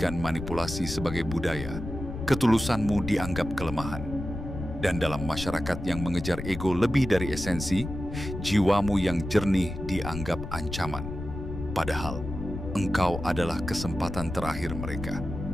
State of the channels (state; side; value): noise; left; rumble, 8 dB below the sound